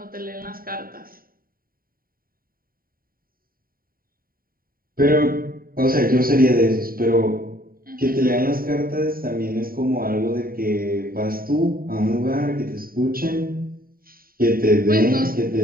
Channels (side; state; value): left; late; 0.42 ms